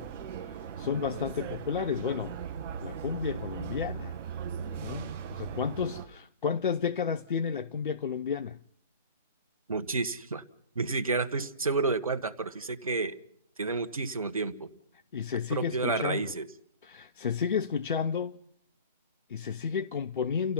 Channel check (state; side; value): inverted; both; correlation -0.38